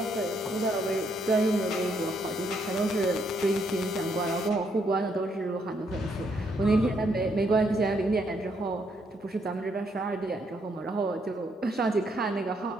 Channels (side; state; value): both; normal; correlation 0.74